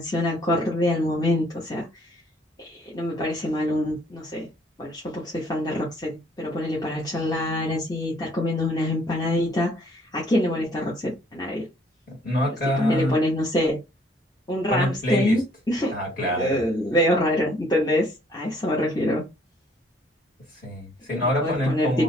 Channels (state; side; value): normal; both; correlation 0.62